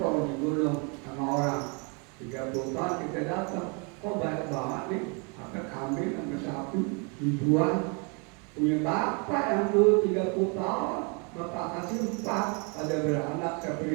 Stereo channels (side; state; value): left; quieter; 34.3 dB